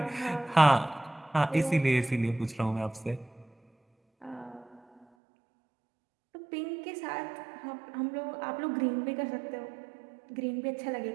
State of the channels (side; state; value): left; drops out; at 5.1 s